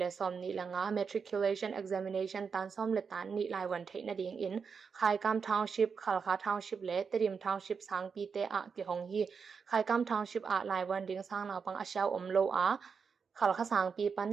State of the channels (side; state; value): left; quieter; 5.8 dB